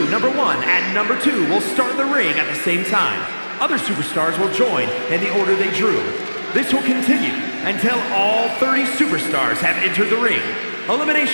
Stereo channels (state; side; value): inverted; both; correlation -1.00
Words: number 1 and number 2 will start in the ring at the same time. Other superstars will join in the order they drew. This will continue until all 30 superstars have entered the ring.